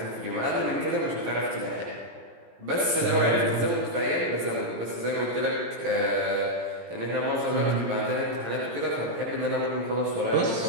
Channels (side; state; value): left; late; 18 ms